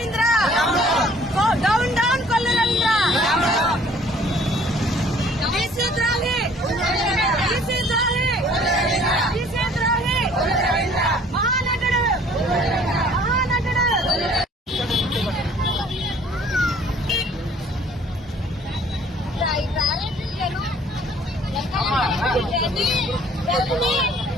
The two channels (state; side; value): normal; both; correlation 0.56